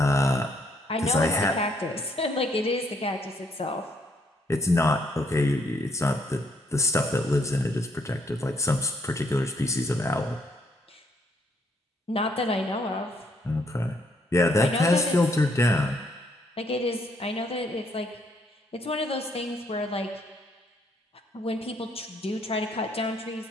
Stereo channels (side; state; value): both; normal; correlation 0.70